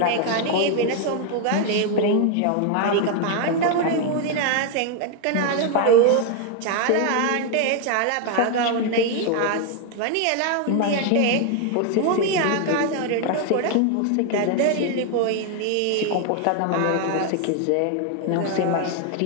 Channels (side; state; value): both; different; correlation 0.01